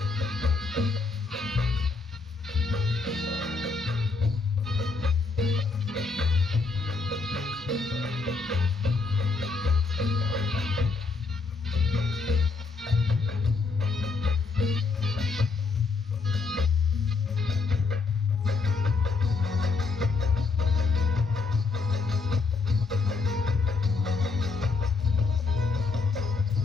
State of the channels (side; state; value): right; quieter; 4.2 dB